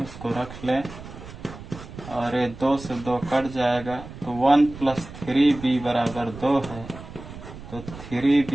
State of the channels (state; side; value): noise; right; rumble, 14 dB below the sound